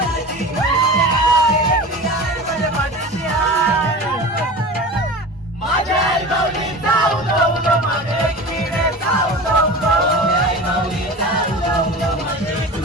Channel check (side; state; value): both; normal; correlation 0.33